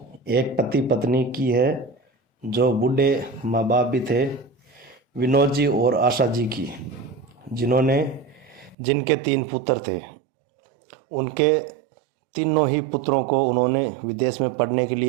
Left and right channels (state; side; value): drops out; left; at 8.8 s